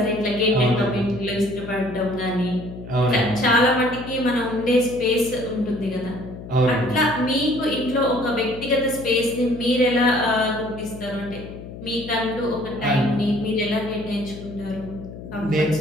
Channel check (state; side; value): noise; left; hum, 13 dB below the sound